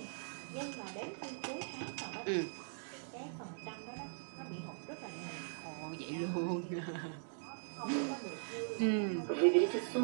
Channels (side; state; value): left; silent; digital silence